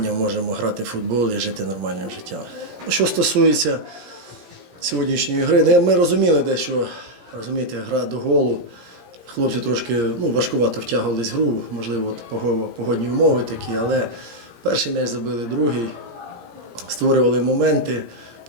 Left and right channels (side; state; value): left; late; 17 ms